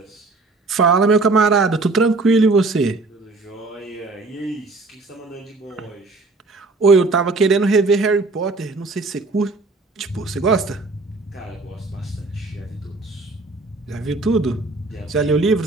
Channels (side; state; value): left; quieter; 3.4 dB